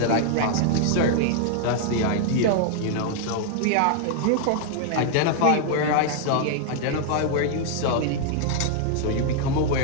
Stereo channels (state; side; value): different; both; correlation -0.01